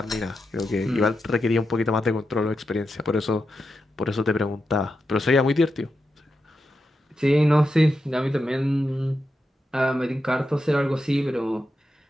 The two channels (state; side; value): normal; both; correlation 0.87